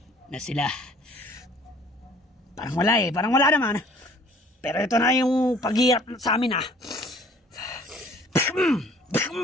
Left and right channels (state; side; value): normal; both; correlation 0.54